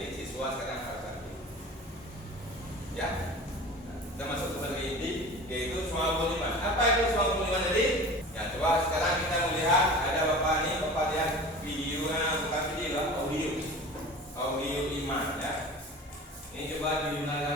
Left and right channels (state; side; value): normal; both; correlation 0.38